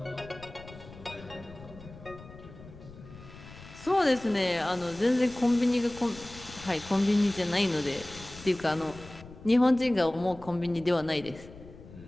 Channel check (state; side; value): noise; left; rumble, 18 dB below the sound